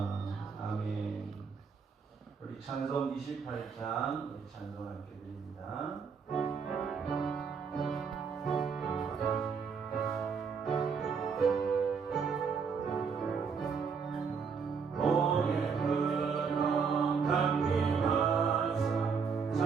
아멘. 우리 찬송 28장 우리 찬송 함께 드립니다.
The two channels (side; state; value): left; quieter; 5.8 dB